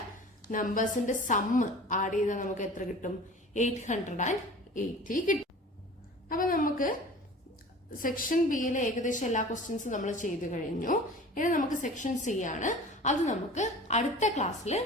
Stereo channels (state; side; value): normal; both; correlation 0.41